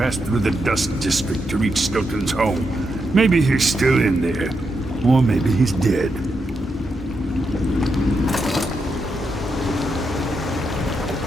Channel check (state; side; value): normal; both; correlation 0.83